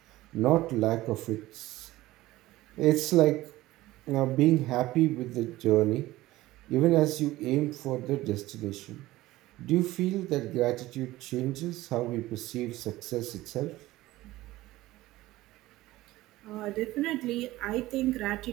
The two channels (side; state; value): left; quieter; 17.3 dB